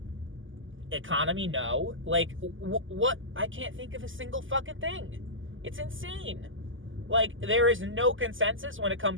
Economy, no. Like, what? I can't think of a single fucking thing. It's insane. Like, there is no consensus when it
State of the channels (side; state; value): left; late; 0.57 ms